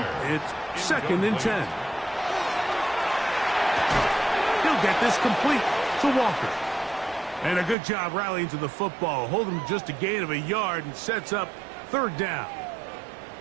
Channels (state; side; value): drops out; left; at 7.8 s